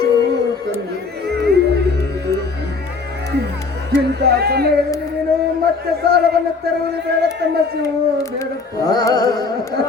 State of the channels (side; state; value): right; quieter; 4.3 dB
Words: ಇಂಥ ಸಮಯದಲ್ಲಿ ನೀನು ಮತ್ತೆ ಸಾಲವನ್ನು ತರುವುದು ಬೇಡ ತಮ್ಮ ಶಿವು, ಬೇಡಪ್ಪ.